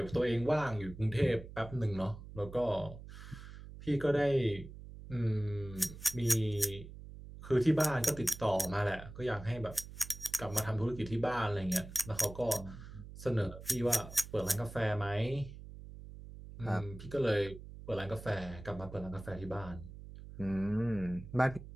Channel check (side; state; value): right; noise; hum, 14 dB below the sound